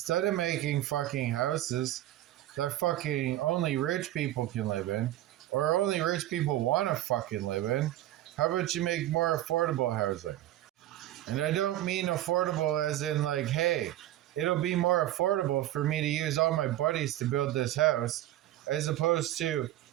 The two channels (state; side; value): quieter; left; 14.1 dB